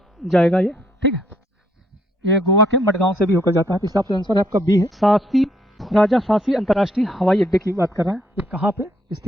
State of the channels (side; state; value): both; normal; correlation 0.70